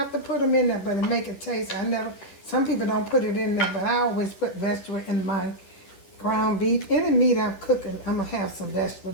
to put them in there, but it make it taste. Some people don't put it in there, but I always put vegetable in my ground beef. Any meat I'm cooking, I'm going to have some vegetable.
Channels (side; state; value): right; late; 10 ms